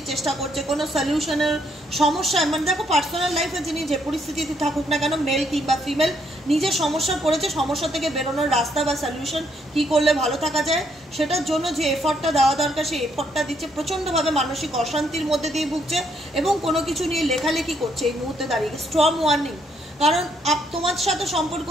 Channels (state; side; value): normal; both; correlation 0.72